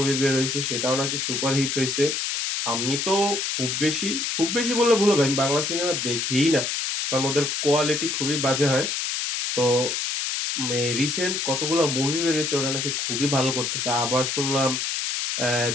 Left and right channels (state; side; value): noise; left; hiss, 1 dB below the sound